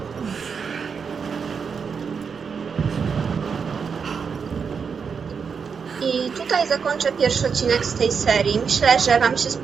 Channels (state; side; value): quieter; left; 6.0 dB